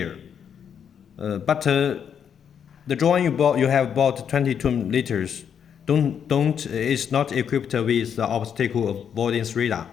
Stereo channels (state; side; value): quieter; right; 8.0 dB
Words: But the drone you have bought 22 liters is not equipped with the obstacle avoidance radar.